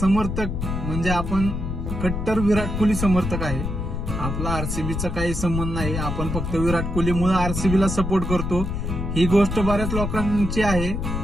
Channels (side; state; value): left; noise; rumble, 3 dB below the sound